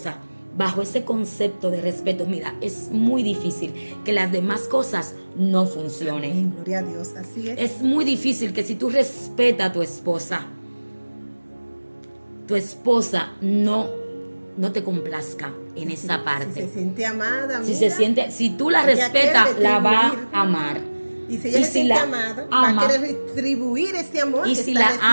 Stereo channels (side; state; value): both; inverted; correlation -1.00